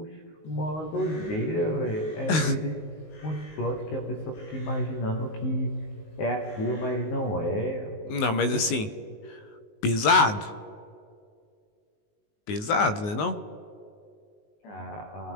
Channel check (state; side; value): late; right; 19 ms